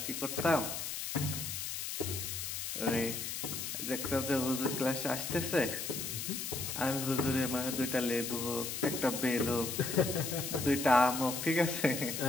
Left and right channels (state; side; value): noise; left; hiss, 4 dB below the sound